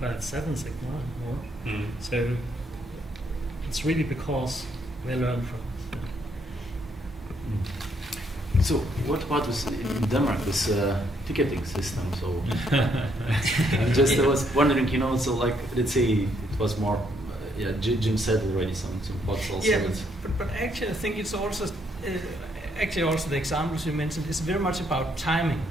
Seven Sigma more. So it's really because we learn from it. So what about this in Denmark, this ticketing system? So I was wondering, so like, let's say it was more, Jim said already some thoughts also. Yeah, but actually I think it's also, also the examples you mentioned is very much about timing.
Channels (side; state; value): both; normal; correlation 0.72